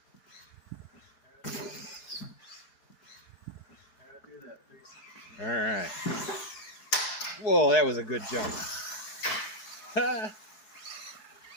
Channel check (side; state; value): right; late; 4.7 ms